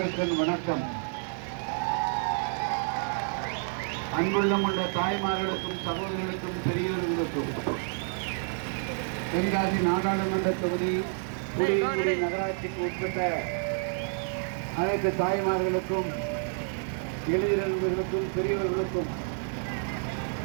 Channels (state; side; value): silent; left; 58 dB below the other